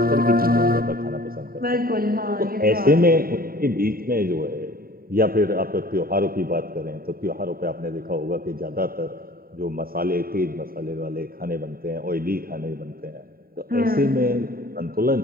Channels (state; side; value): late; left; 0.43 ms